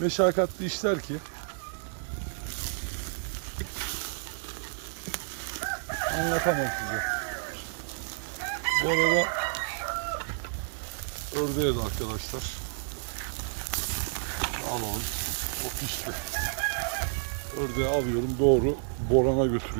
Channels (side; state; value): left; silent; digital silence